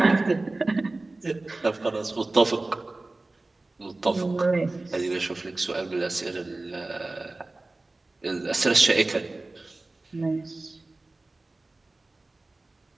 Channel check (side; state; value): left; quieter; 3.1 dB